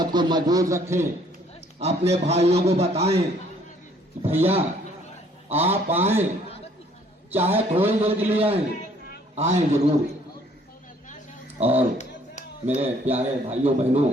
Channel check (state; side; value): normal; both; correlation 0.61